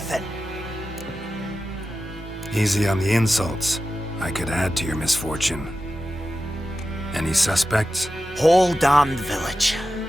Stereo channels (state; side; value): normal; both; correlation 0.92